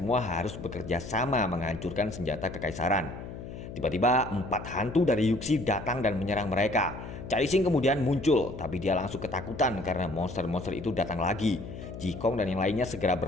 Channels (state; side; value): noise; left; hum, 10 dB below the sound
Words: harus bekerja sama menghancurkan senjata kekaisaran. Tiba-tiba 4 hantu dari Yuxi datang dan menyerang mereka. Caixing kemudian muncul, tapi dia langsung ketakutan karena monster-monster itu datang lagi. Jikong dan yang lainnya segera